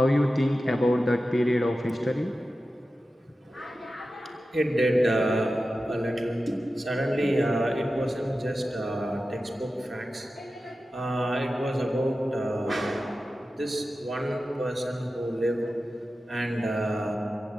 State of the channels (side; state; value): both; normal; correlation 0.93